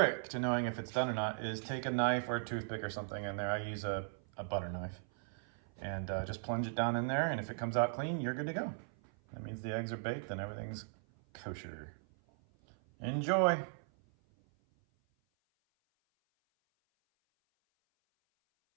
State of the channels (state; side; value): silent; left; 53 dB below the other